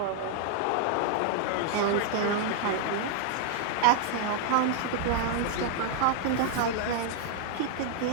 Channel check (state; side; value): different; both; correlation 0.00